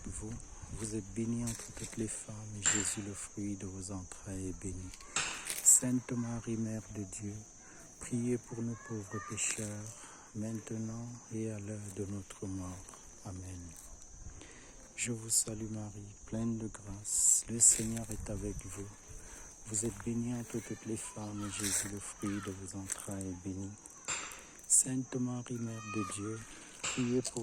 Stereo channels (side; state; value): both; identical; correlation 1.00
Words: vous. Vous êtes bénie entre toutes les femmes, et Jésus, le fruit de vos entrailles, est béni. Sainte Marie, Mère de Dieu, priez pour nous pauvres pécheurs, maintenant et à l'heure de notre mort. Amen. Je vous salue Marie, pleine de grâce, le Seigneur est avec vous. Vous êtes bénie entre toutes les femmes, et Jésus, le fruit de vos entrailles, est béni. Sainte Marie, Mère de Dieu, priez